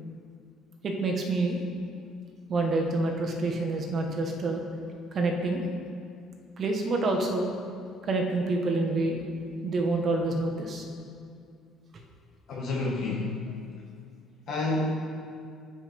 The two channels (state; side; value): normal; both; correlation 0.66